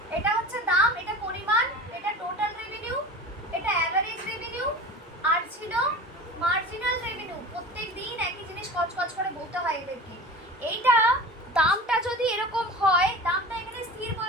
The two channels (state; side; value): normal; both; correlation 0.35